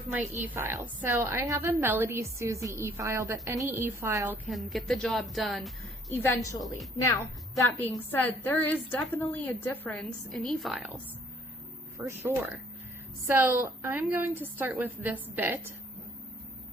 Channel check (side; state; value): both; normal; correlation 0.60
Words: my e-file. So I have a Melody Susie e-file, but any e-file can get the job done eventually. Now, that being said, there is definitely a difference in e-files, for sure. So I'm going to start with this bit,